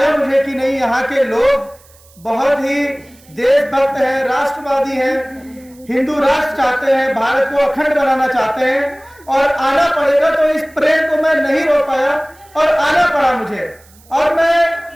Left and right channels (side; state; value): right; noise; hiss, 28 dB below the sound